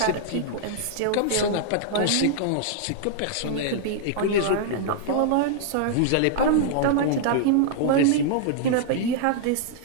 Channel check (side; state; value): both; different; correlation -0.01